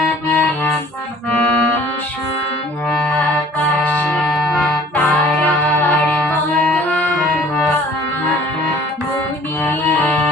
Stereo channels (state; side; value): normal; both; correlation 0.51